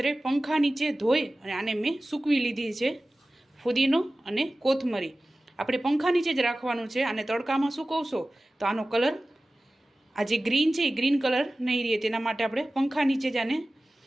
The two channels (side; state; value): both; normal; correlation 0.96